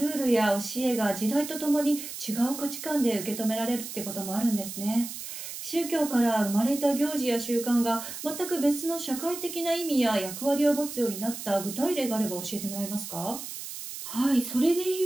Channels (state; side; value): noise; right; hiss, 9 dB below the sound